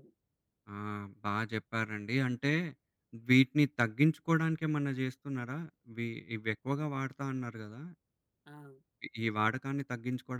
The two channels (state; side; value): identical; both; correlation 1.00